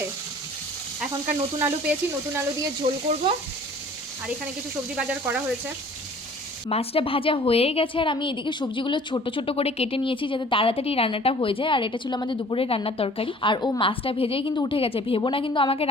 এখনকার নতুন আলু পেয়েছি, নতুন আলু দিয়ে ঝোল করব। আর এখানে কিছু সবজি বাজার করা হয়েছে। মাছটা ভাজা হয়ে গেছে আর আমি এদিকে সবজিগুলো ছোট ছোট করে কেটে নিয়েছি যাতে তাড়াতাড়ি রান্নাটা হয়ে যায়। আর এটা ছিল আমাদের দুপুরের রান্নার তরকারি। আর ও মাছটা ভেজেই কিন্তু উঠে গেছে, ভেবো না কিন্তু আমাকে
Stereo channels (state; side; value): normal; both; correlation 0.50